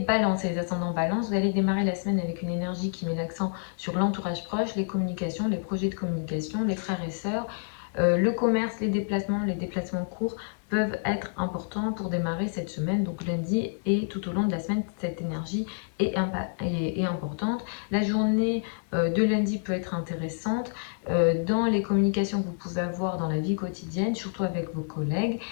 et les ascendants balance, vous allez démarrer la semaine avec une énergie qui met l'accent sur l'entourage proche, les communications, les projets de communication, les frères et sœurs, le commerce, les déplacements courts peuvent être importants pour démarrer cette semaine, donc lundi et tout au long de la semaine, cette énergie est importante. La journée de lundi peut être intéressante dans les communications que vous pouvez avoir dans la vie quotidienne, surtout avec vos collègues.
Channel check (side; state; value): right; silent; 59 dB below the other